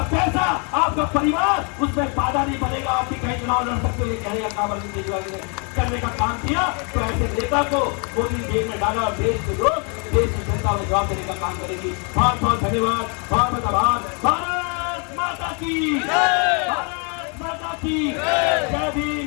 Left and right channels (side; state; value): right; quieter; 36.7 dB